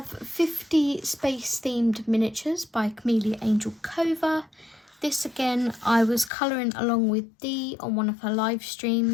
50 space-themed miniatures by Camellia Angel Cova. This again, I was colouring along with Dee on one of her live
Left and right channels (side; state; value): right; drops out; at 6.3 s